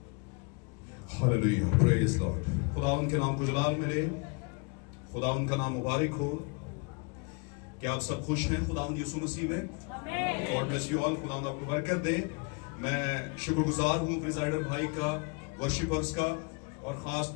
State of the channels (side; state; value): right; quieter; 32.9 dB